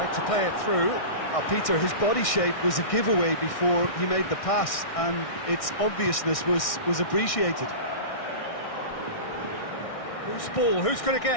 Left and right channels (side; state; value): right; late; 1.6 ms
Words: to play it through. Peter, his body shape was a giveaway before he made the pass, and its obviousness was appreciated. Who's ball? Who's going to